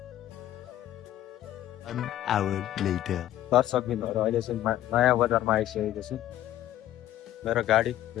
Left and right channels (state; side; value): quieter; right; 13.2 dB